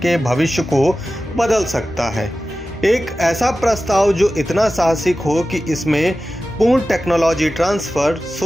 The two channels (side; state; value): both; normal; correlation 0.94